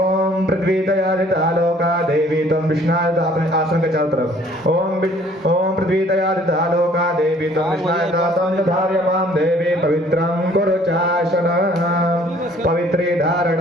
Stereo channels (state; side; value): normal; both; correlation 0.57